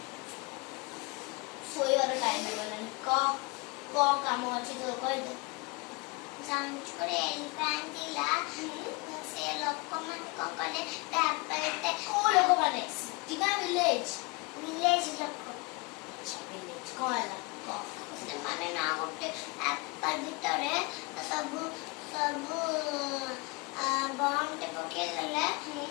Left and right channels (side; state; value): right; quieter; 28.3 dB